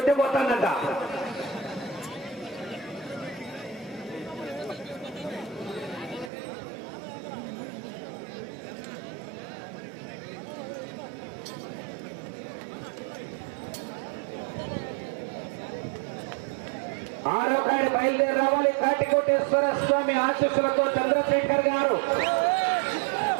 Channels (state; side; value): drops out; left; at 6.3 s